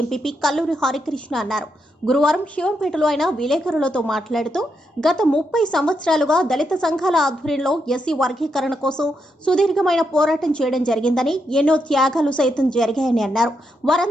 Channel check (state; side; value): normal; both; correlation 0.82